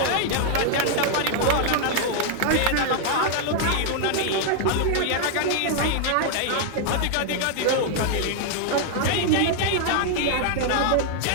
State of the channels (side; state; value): both; different; correlation 0.00